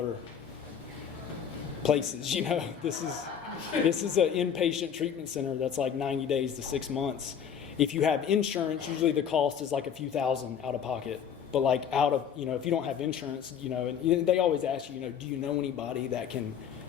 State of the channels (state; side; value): quieter; right; 8.1 dB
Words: places, you know. This is an inpatient treatment center that's like 90 days to 6 months. If you have insurance, usually the cost is like a few thousand out of pocket. But like if you don't have insurance, you know, and they always ask you, you know, do you know anybody that can,